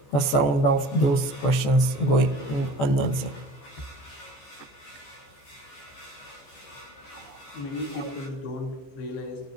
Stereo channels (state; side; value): late; right; 14 ms